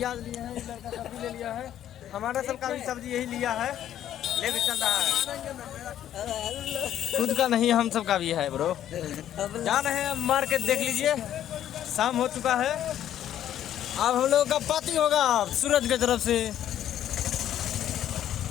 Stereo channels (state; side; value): quieter; right; 11.2 dB